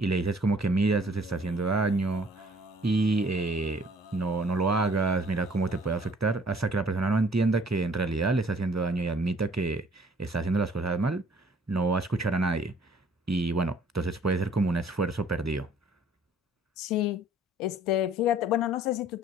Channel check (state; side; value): normal; both; correlation 0.57